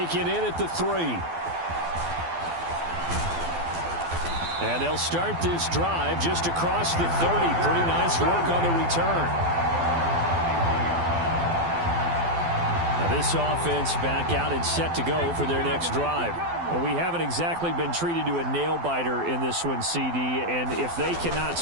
in at the 3. And they'll start this drive just across the 30. Pretty nice work on the return. Now this offense back out and set to go for their next drive. Well, we haven't exactly been treated to a nail-biter in this one, CD. And if they cannot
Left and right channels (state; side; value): late; left; 12 ms